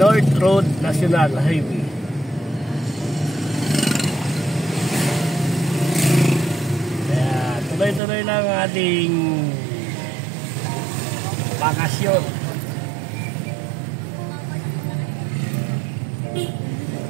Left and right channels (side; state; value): left; drops out; at 8.0 s